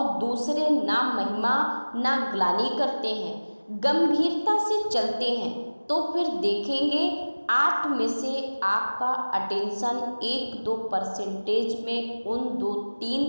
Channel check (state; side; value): inverted; both; correlation -1.00